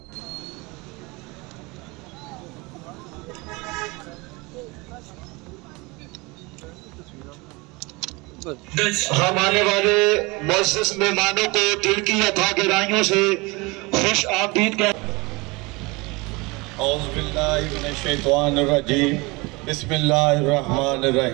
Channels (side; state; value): left; quieter; 25.3 dB